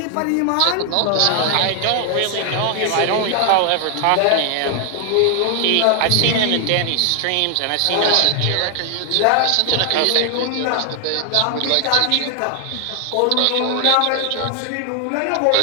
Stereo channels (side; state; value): both; different; correlation 0.00